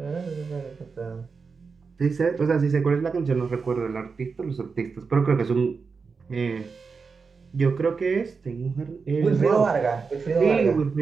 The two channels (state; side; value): quieter; left; 5.0 dB